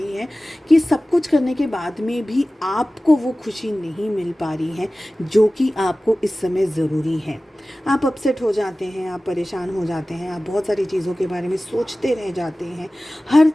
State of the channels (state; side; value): normal; both; correlation 0.97